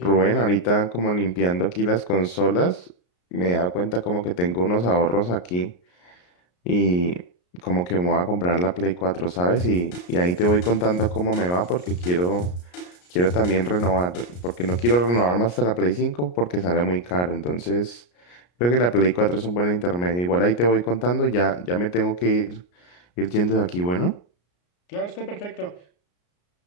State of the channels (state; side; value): late; right; 34 ms